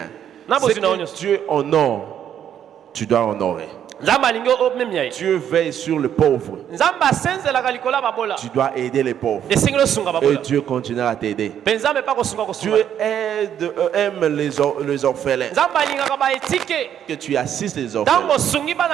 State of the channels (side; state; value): left; quieter; 9.6 dB